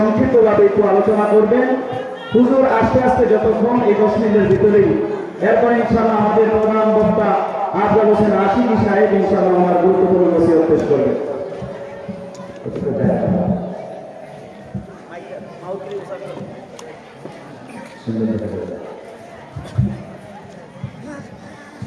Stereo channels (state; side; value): identical; both; correlation 1.00